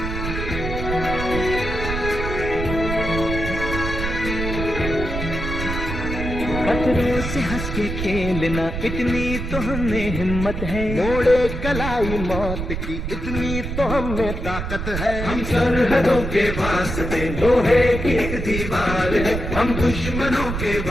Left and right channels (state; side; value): noise; right; rumble, 4 dB below the sound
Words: खतरों से हंस के खेलना इतनी तो हमें हिम्मत है मोड़े कलाई मौत की इतनी तो हमें ताकत है हम सरहदों के वास्ते लोहे की एक दीवार है हम दुश्मनों के